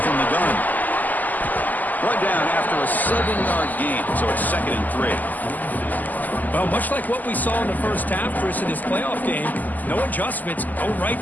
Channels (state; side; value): late; right; 0.083 ms